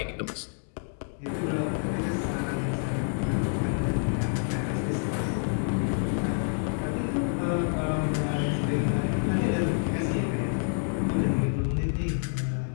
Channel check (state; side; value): silent; right; 59 dB below the other